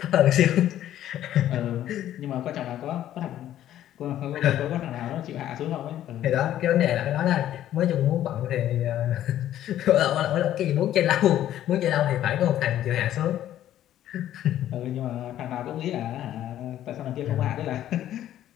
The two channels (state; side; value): quieter; right; 12.2 dB